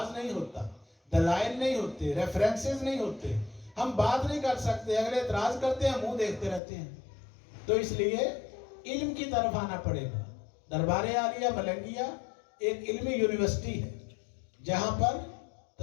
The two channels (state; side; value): drops out; right; at 6.6 s